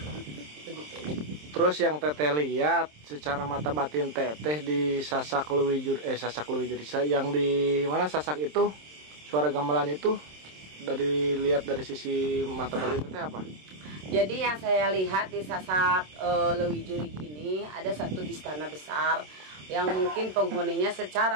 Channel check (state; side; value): late; left; 27 ms